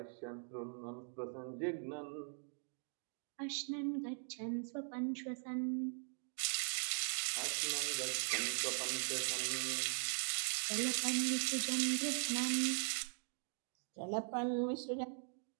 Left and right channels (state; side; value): silent; left; 50 dB below the other